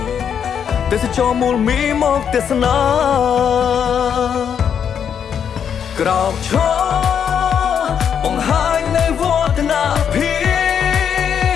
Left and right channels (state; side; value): quieter; right; 7.9 dB